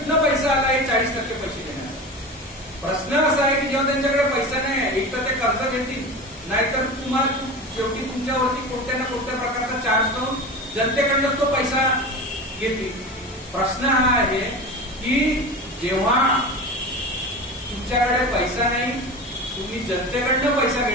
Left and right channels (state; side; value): normal; both; correlation 0.29